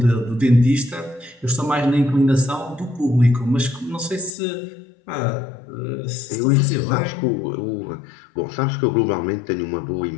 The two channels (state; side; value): drops out; right; at 4.3 s